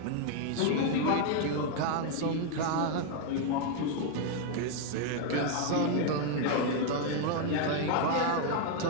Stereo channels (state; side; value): different; both; correlation 0.00